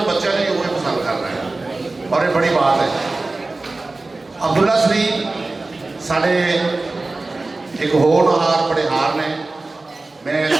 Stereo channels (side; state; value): left; quieter; 3.3 dB